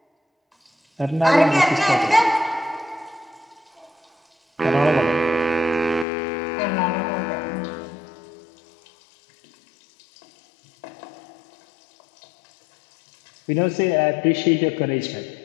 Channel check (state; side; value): drops out; right; at 6.1 s